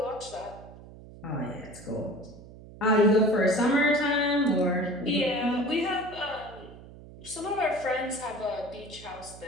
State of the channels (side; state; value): right; noise; hum, 18 dB below the sound